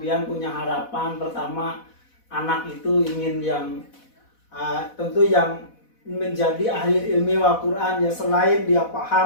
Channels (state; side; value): late; right; 4.1 ms